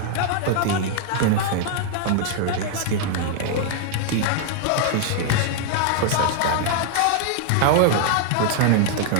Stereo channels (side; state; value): both; different; correlation 0.00